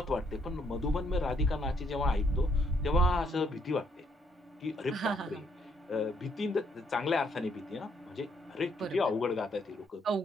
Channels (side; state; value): both; normal; correlation 0.71